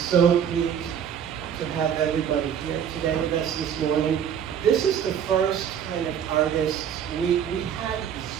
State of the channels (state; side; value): quieter; left; 8.6 dB